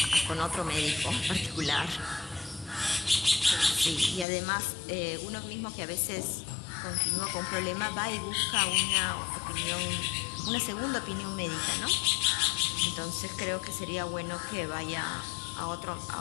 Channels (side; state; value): right; drops out; at 4.2 s